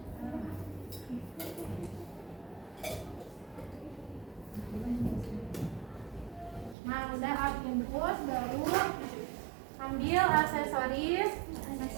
Nah, udah infus baru ambil aksesoris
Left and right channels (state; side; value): drops out; left; at 6.8 s